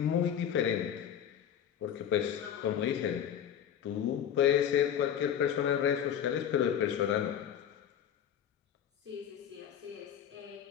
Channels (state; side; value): quieter; right; 9.3 dB